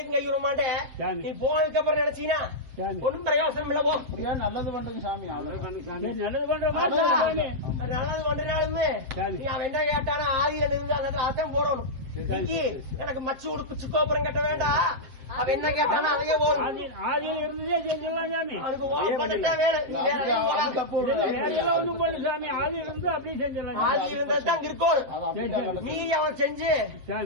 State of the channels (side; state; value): left; late; 7.6 ms